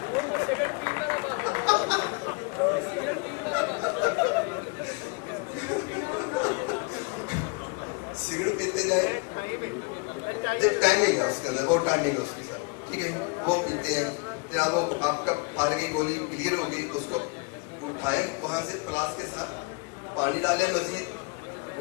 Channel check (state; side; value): quieter; right; 31.3 dB